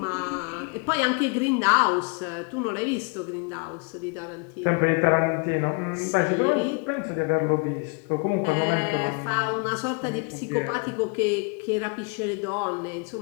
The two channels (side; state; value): right; quieter; 33.1 dB